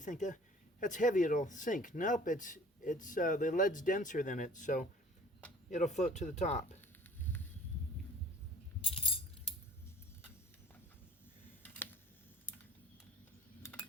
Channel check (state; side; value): normal; both; correlation 0.49